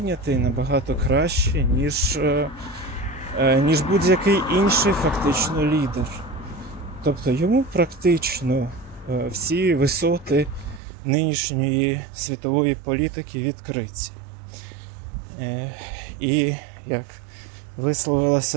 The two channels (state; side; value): drops out; left; at 10.8 s